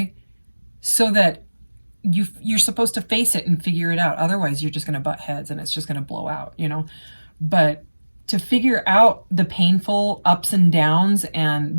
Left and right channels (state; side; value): inverted; both; correlation -1.00